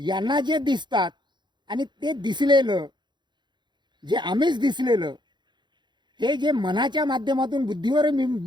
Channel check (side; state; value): left; late; 0.22 ms